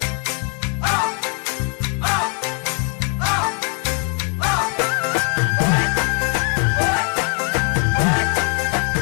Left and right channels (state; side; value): quieter; right; 38.7 dB